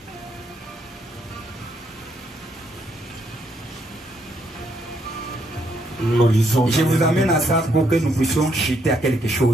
Je vous amène à ça pour que nous puissions chuter à quelque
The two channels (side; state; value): both; normal; correlation 0.74